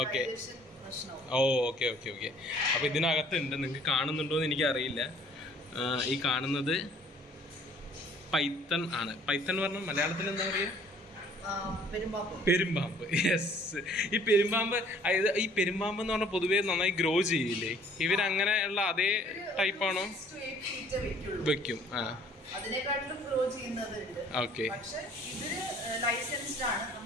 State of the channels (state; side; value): normal; both; correlation 0.57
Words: ഓക്കെ. ഓ ഓക്കെ ഓക്കെ ഓക്കെ. അപ്പൊ ഇതിനകത്തുണ്ട്, നിങ്ങൾക്ക് കാണുന്നുണ്ടോ എന്ന് എനിക്ക് അറിയില്ല. ഈ കാണുന്നത് പൈത്തൺ ആണ്. പൈത്തൺ പറഞ്ഞാൽ മലയാളത്തിൽ എന്താ പറയുക? പെരുമ്പാമ്പ്. യെസ്. ഈ പെരുമ്പാമ്പ്, അതായത് ഈ പെരുമ്പാമ്പ് എന്ന് പറഞ്ഞാൽ പൊതുവേ നന്നായി ഗ്രോ ചെയ്യില്ലേ? ഇവരങ്ങനെയുള്ള അതേ ടൈപ്പാണോ? വെക്കും. ആ ഓക്കെ.